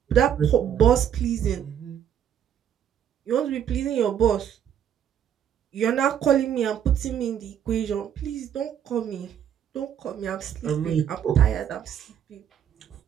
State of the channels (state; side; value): quieter; left; 9.3 dB